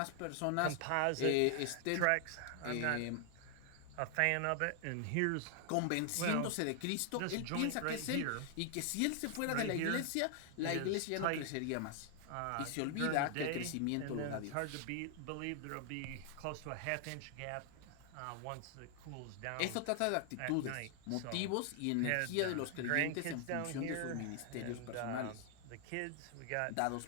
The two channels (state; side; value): different; both; correlation 0.00